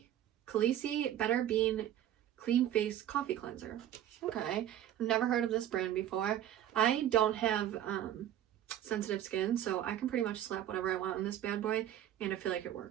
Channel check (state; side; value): quieter; left; 11.5 dB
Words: Better Bean Clean Face Coffee Cleanser. Okay, I've never heard of this brand before. I don't have sensitive skin, so I can pretty much slap whatever I want on this bad boy and I feel like it